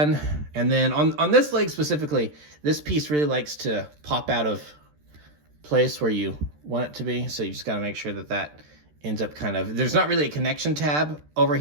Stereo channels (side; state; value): left; late; 13 ms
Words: And then on this leg specifically, this piece really likes to pop out of place where you want it to be. So you just got to make sure that that ends up kind of, there's not really a connection tab over